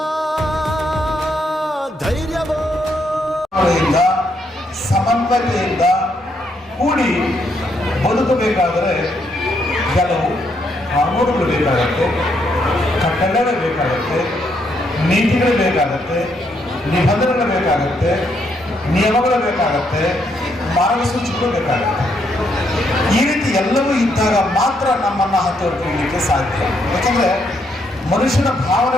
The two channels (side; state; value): both; normal; correlation 0.75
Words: ಧೈರ್ಯವೋ. ಸಮನ್ವಯತೆಯಿಂದ ಕೂಡಿ ಬದುಕಬೇಕಾದರೆ ಕೆಲವು ಕಾನೂನುಗಳು ಬೇಕಾಗತ್ತೆ, ಕಟ್ಟಳೆಗಳು ಬೇಕಾಗತ್ತೆ, ನೀತಿಗಳು ಬೇಕಾಗತ್ತೆ, ನಿಬಂಧನೆಗಳು ಬೇಕಾಗತ್ತೆ, ನಿಯಮಗಳು ಬೇಕಾಗತ್ತೆ, ಮಾರ್ಗಸೂಚಿಗಳು ಬೇಕಾಗತ್ತೆ. ಈ ರೀತಿ ಎಲ್ಲವೂ ಇದ್ದಾಗ ಮಾತ್ರ ನಮ್ಮನ್ನು ಹತ್ತೋರ್ಕೊಳ್ಳಲಿಕ್ಕೆ ಸಾಧ್ಯ. ಯಾಕಂದರೆ ಮನುಷ್ಯನ